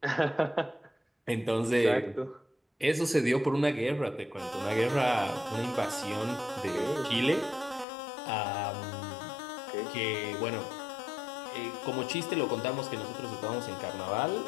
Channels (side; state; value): right; drops out; at 7.9 s